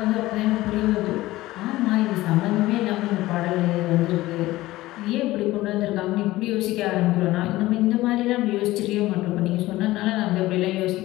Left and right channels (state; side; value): quieter; right; 17.4 dB